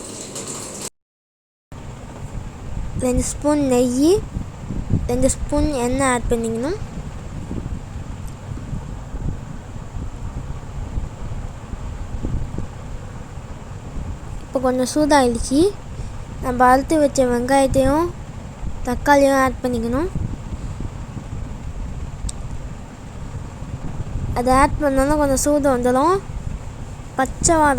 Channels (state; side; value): identical; both; correlation 1.00